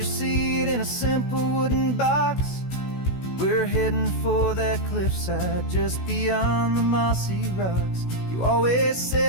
seat in a simple wooden box. We're heading for that cliffside just beyond the mossy rocks. You always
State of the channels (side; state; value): right; late; 16 ms